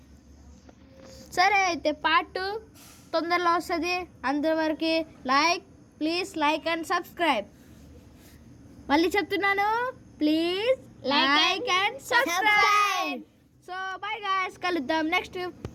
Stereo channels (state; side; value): identical; both; correlation 1.00